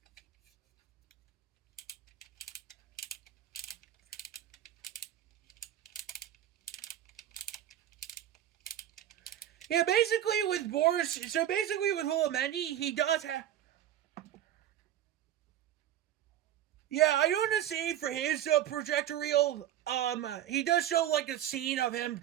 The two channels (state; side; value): quieter; left; 11.6 dB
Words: Yeah, basically with Boris, so basically with Hulamendi, he does have. Yeah, I don't want to say for his projector reel, he does show like a scene of him